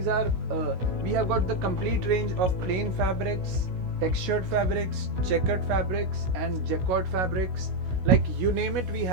are we have got the complete range of plain fabrics, textured fabrics, checkered fabrics and jacquard fabrics. Like you name it, we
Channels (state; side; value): late; left; 16 ms